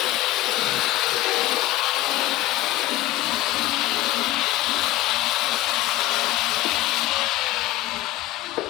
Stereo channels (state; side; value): quieter; right; 16.5 dB